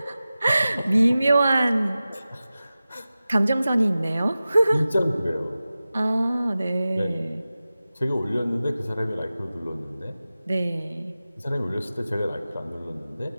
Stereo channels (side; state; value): both; inverted; correlation -0.95